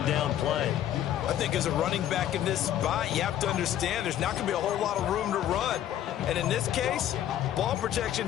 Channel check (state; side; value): quieter; right; 11.5 dB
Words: down play. I think as a running back in this spot, you have to understand there's not going to be a whole lot of room to run. And in this case, ball protection